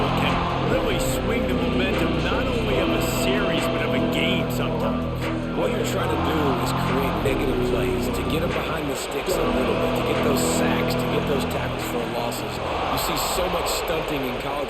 can really swing the momentum not only of a series but of a game sometimes. What you're trying to do is create negative plays, to get them behind the sticks a little bit, to get those sacks, to get those tackles for losses. You see so much stunting in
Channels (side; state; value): both; identical; correlation 1.00